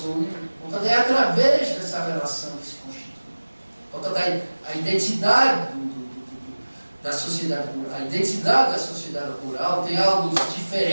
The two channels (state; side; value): inverted; both; correlation -1.00